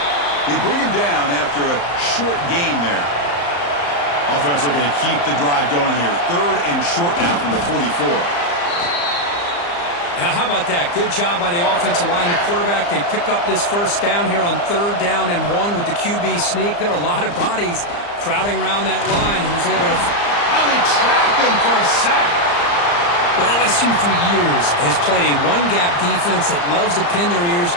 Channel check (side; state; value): right; late; 35 ms